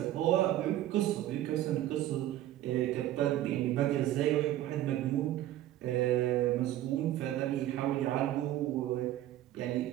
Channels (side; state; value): left; quieter; 13.6 dB